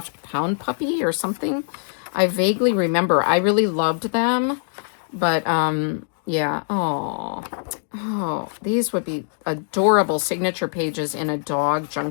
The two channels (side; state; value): right; silent; digital silence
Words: Pound Puppy or something. I vaguely remember. I really loved them, but Yeah. Oh, these would be adorable signature pages in a dog